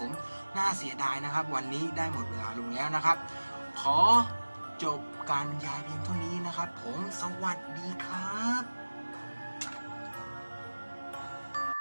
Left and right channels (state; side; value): inverted; both; correlation -1.00